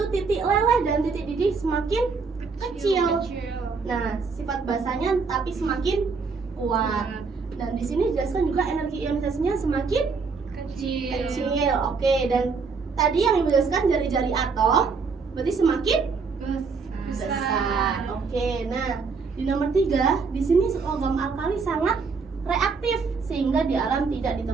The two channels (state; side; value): quieter; left; 4.9 dB